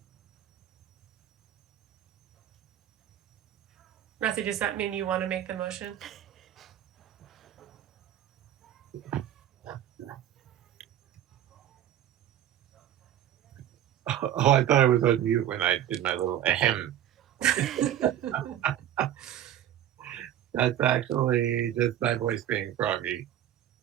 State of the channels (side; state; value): left; quieter; 11.2 dB